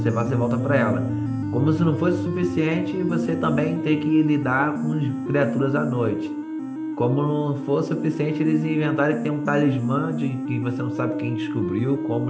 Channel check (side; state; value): both; identical; correlation 1.00